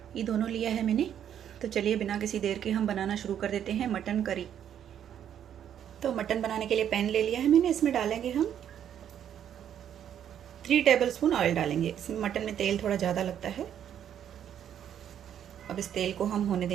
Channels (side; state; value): left; quieter; 9.7 dB